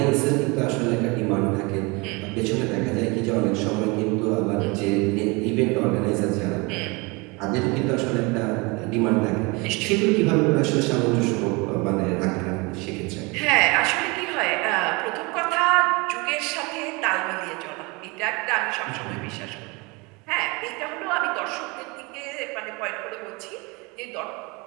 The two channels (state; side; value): quieter; left; 27.0 dB